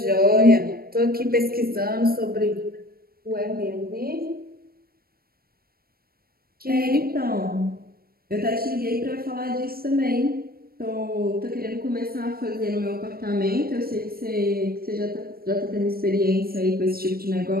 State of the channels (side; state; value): left; late; 0.44 ms